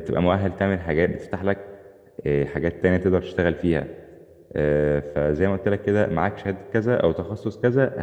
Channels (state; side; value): identical; both; correlation 1.00